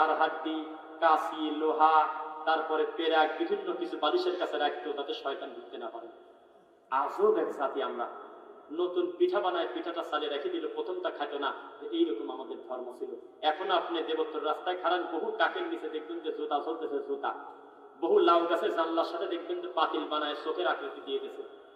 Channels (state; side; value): identical; both; correlation 1.00